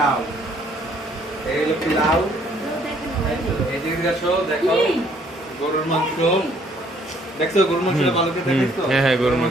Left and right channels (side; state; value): both; normal; correlation 0.63